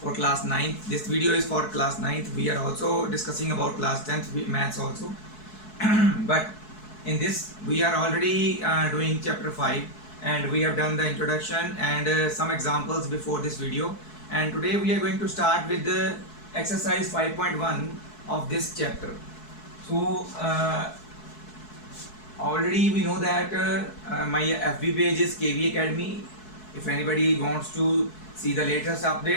for class 9th. This video is for class 9th. We are also discussing about class 10th maths also. But in this we are already doing chapter 5, and we have done the introduction and some examples before this video, and today we are going to start with the exercise 5.1 of this chapter. So already we know that my FB page is KV Academy. If anybody wants to see the latest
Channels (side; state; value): right; late; 4.7 ms